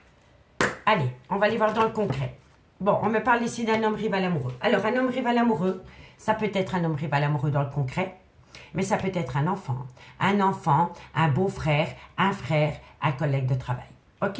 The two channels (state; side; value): identical; both; correlation 1.00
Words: Allez, on va aller voir dans le concret. Bon, on me parle ici d'un homme rival amoureux. Alors, un homme rival amoureux, ça peut être un homme rival amoureux dans le concret, mais ça peut être un enfant, un beau-frère, un collègue de travail.